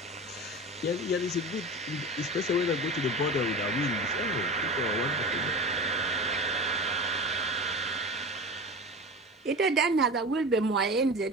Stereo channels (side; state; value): both; normal; correlation 0.31